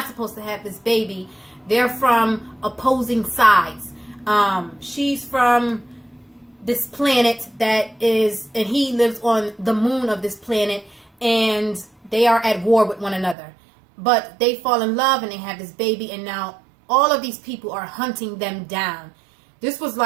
supposed to have this baby. They're from opposing sides. She's from this planet that is, and he lives on the moon of this planet, and they are at war with one another. But they fall in love, and they have this baby, and now all of these people are hunting them down. This was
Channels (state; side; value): drops out; left; at 13.4 s